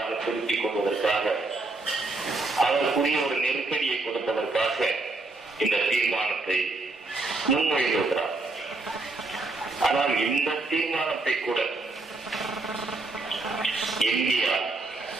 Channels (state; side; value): quieter; left; 3.2 dB